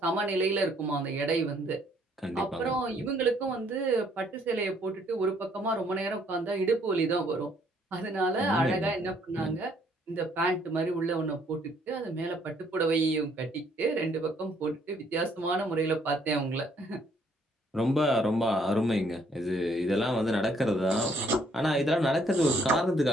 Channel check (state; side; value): normal; both; correlation 0.66